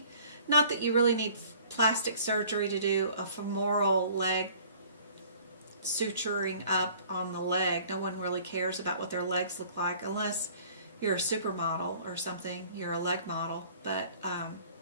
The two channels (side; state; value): both; inverted; correlation -0.52